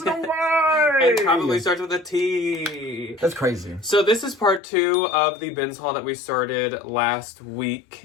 know why. And probably starts with a T. That's crazy. So this is part 2 of the bins haul that we started last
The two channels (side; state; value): right; drops out; at 4.6 s